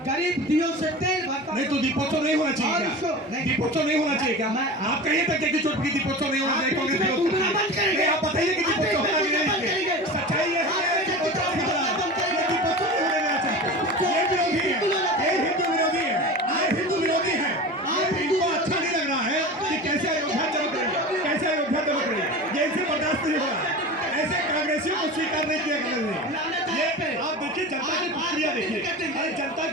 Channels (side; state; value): both; normal; correlation 0.32